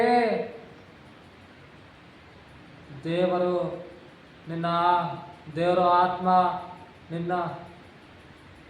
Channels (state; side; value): identical; both; correlation 1.00